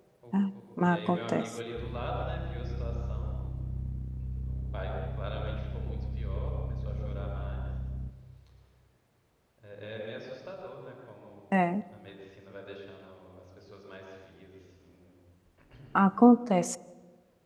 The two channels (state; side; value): identical; both; correlation 1.00